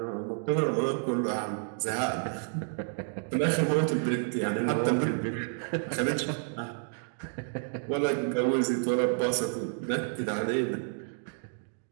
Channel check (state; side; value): silent; left; 57 dB below the other